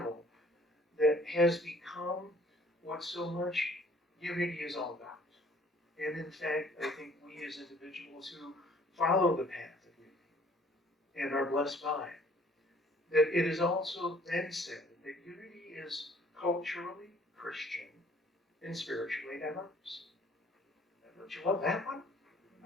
that has become what so much unity is all about. And in fact, I think we as individuals who follow the path of unity and are blessed by it, that it is also then said that unity is culturally Christian and spiritually diverse. Don't you love that one?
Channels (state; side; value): normal; both; correlation 0.58